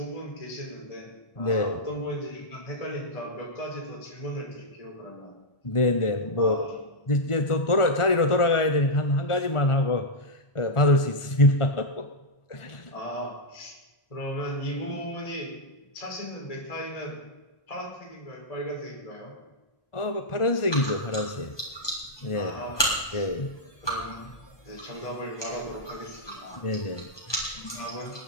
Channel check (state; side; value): late; right; 1.2 ms